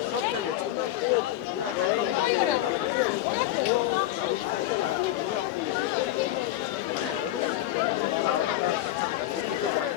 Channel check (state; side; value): quieter; right; 14.3 dB